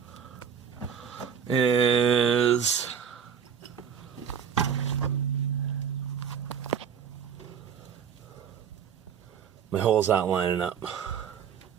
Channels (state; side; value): quieter; left; 7.6 dB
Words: is my holes aren't lining up.